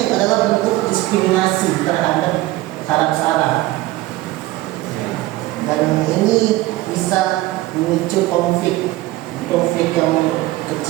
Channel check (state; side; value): quieter; left; 17.6 dB